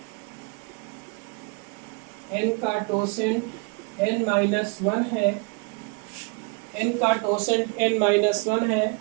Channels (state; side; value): quieter; left; 32.3 dB